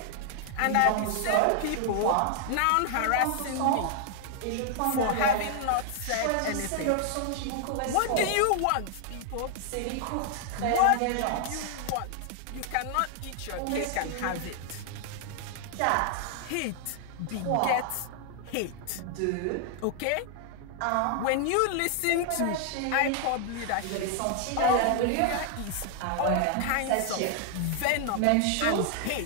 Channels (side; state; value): both; different; correlation 0.00